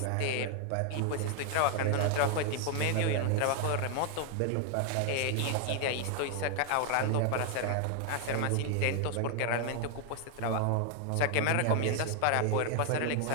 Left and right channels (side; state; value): both; different; correlation 0.00